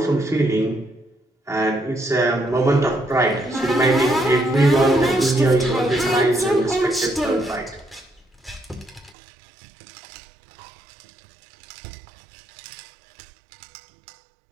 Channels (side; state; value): left; drops out; at 9.2 s